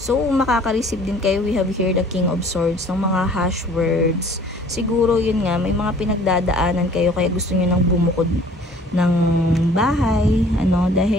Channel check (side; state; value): both; normal; correlation 0.52